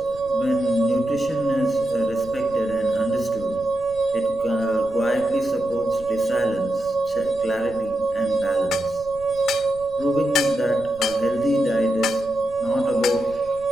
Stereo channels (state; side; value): noise; right; rumble, 20 dB below the sound